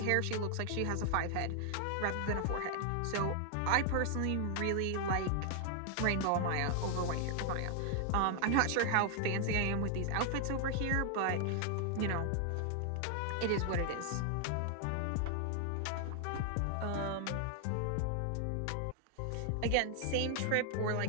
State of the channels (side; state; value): both; different; correlation 0.00